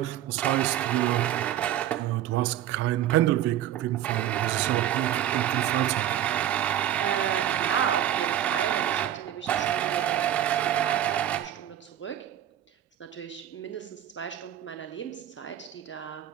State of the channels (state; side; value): quieter; left; 11.5 dB